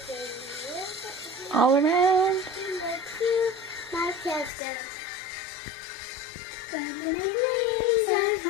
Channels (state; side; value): drops out; right; at 4.5 s